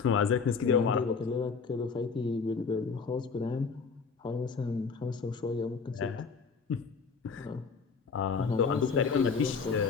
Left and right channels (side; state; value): right; quieter; 5.3 dB